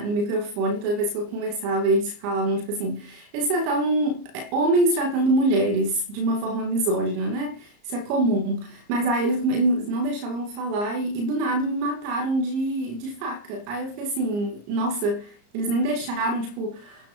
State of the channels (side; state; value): left; late; 34 ms